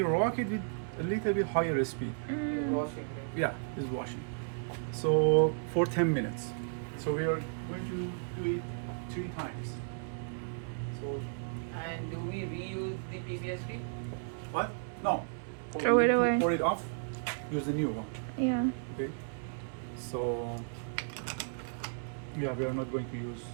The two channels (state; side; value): silent; left; 55 dB below the other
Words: rock it with a little bit higher speed. Washing. Yeah, it's washing. So for 10 minutes. So we are going to do it 3 times. So And do we reuse the PCSP? what? No. Throw We it need to away. Pour it off. Use the new one. Yeah. Okay. So yeah, we are not going to use